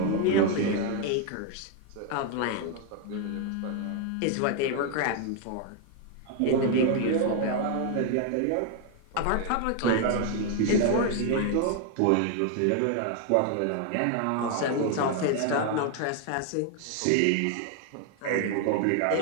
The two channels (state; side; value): different; both; correlation 0.00